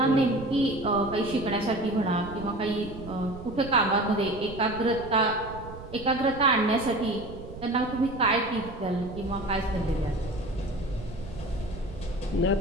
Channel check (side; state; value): right; noise; rumble, 13 dB below the sound